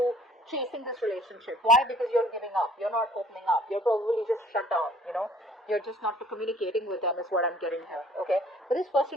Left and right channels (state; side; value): normal; both; correlation 0.56